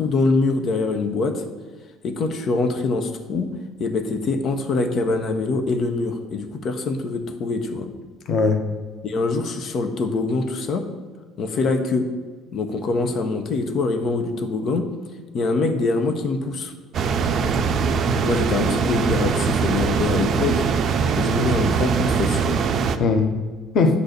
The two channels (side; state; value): both; normal; correlation 0.59